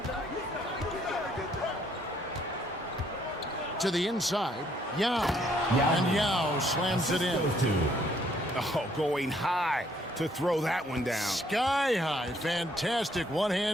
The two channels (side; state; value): both; normal; correlation 0.67